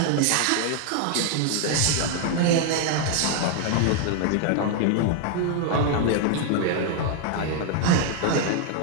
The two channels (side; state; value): both; different; correlation 0.00